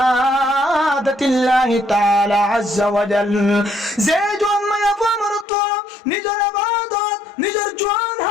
তাআলা আযজা ওয়া জাল যে জোয়ান মায়া আমরত নিজের ইবাদত নিজের জোয়ান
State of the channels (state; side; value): drops out; right; at 5.5 s